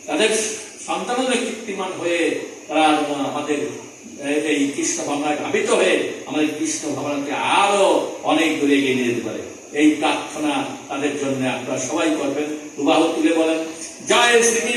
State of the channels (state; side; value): identical; both; correlation 1.00